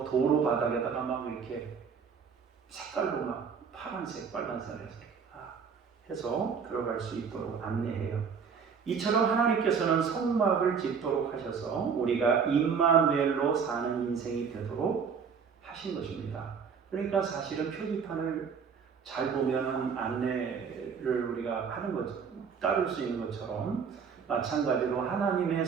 도로 바닥에다가 막 이렇게 색깔로 막 파란색, 빨간색 해서 들어갈 수 있도록 안내해요. 이처럼 하나님께서는 성막을 짓도록 하셔서 우리가 임마누엘로 사는 인생이 되도록 하신 것입니다. 그러니까 사실은 표지판을 잘 보면 안내를 우리가 하는 것, 따를 수 있는 것처럼 마찬가지로 하나님의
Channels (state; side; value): quieter; left; 6.3 dB